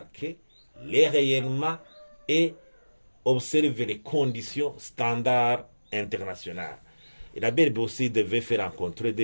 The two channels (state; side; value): inverted; both; correlation -1.00